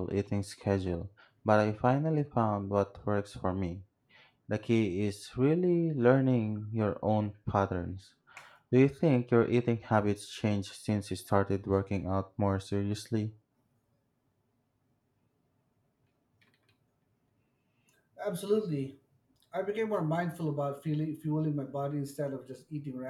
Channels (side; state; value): both; identical; correlation 1.00